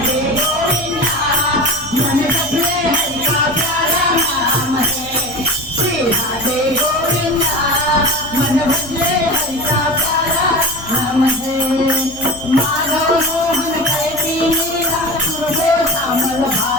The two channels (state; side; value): noise; left; hum, 20 dB below the sound